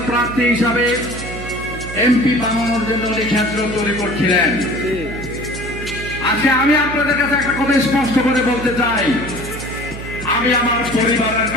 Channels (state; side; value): noise; right; hum, 10 dB below the sound